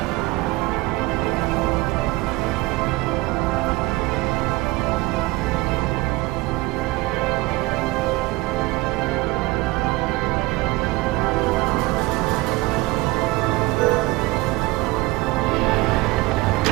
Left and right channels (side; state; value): left; quieter; 21.6 dB